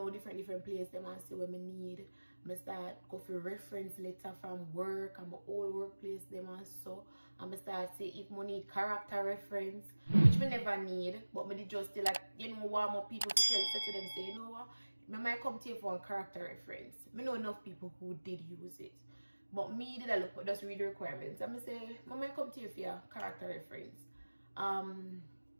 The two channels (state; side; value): inverted; both; correlation -1.00